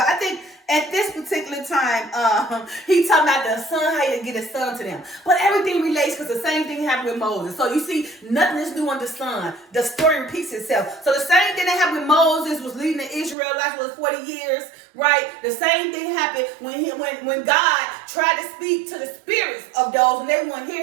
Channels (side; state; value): left; drops out; at 13.4 s